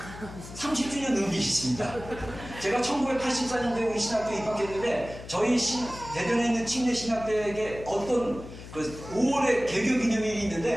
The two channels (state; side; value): noise; left; hum, 14 dB below the sound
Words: 30주년 의미 있습니다. 제가 1984년도에 우리 신학교에 입학했는데, 저희 대전에 있는 침례신학대에 어떤 5월에 개교 기념일이